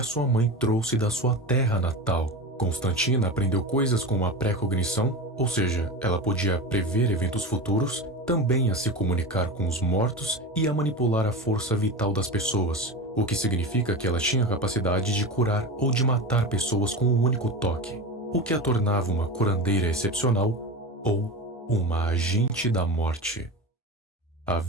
sua mãe trouxe da sua terra natal. Constantina aprendeu coisas como a pré-cognição, ou seja, ela podia prever eventos futuros, também a se comunicar com os mortos e a manipular a força vital das pessoas, o que significa que ela tinha a capacidade de curar ou de matar pessoas com um único toque, o que a tornava uma curandeira excepcional ou uma agente da morte.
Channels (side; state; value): both; normal; correlation 0.25